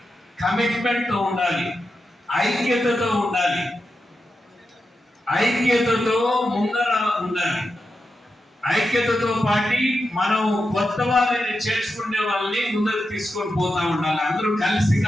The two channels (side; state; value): both; normal; correlation 0.89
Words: కమిట్మెంట్తో ఉండాలి, ఐక్యతతో ఉండాలి, ఐక్యతతో ముందర ఉండాలి. ఐక్యతతో పాటు మనం కొత్త వాళ్ళని చేర్చుకునే వాళ్ళని ముందరకు తీసుకొని పోతా ఉండాలి. అందరూ కలిసి